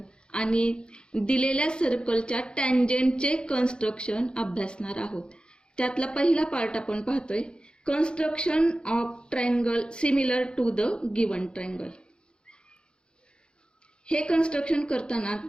आणि दिलेल्या सर्कलच्या टँजेंटचे कन्स्ट्रक्शन अभ्यासणार आहोत. त्यातला पहिला पार्ट आपण पाहतोय, construction of triangle similar to the given triangle. हे कन्स्ट्रक्शन करताना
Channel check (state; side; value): late; right; 0.051 ms